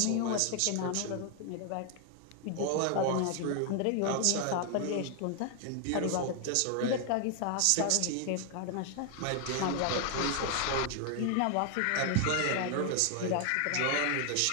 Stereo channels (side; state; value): both; different; correlation 0.00